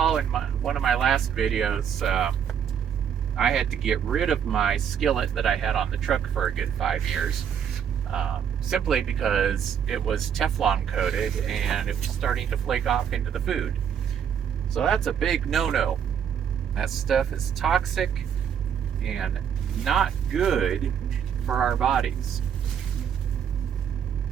in one of my last videos, I had to get rid of my skillet that I had on the truck for a good 5 years. Simply because it was Teflon coated and it was starting to flake off into the food. So that's a big no-no. That stuff is toxic and not good for our bodies.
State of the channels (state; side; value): quieter; left; 8.2 dB